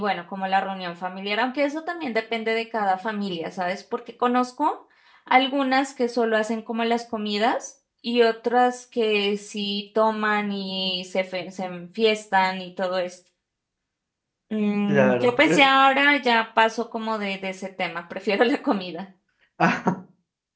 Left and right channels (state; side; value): identical; both; correlation 1.00